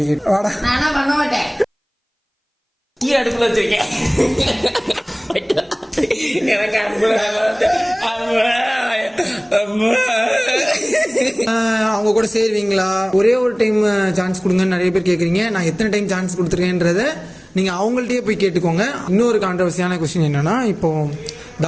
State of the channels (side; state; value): both; identical; correlation 1.00